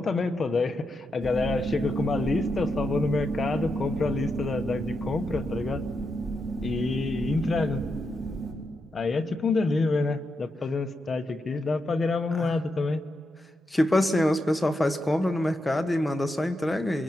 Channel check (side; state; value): both; normal; correlation 0.85